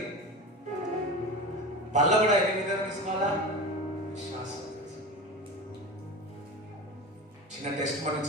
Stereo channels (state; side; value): normal; both; correlation 0.28